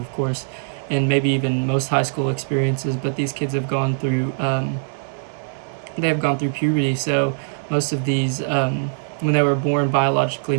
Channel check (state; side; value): silent; left; 64 dB below the other